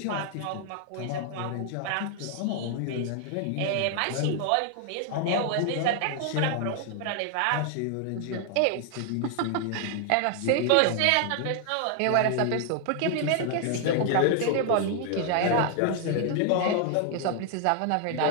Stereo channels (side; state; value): both; different; correlation 0.00